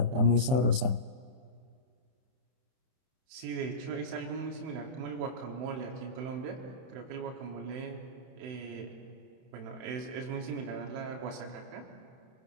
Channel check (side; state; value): left; late; 31 ms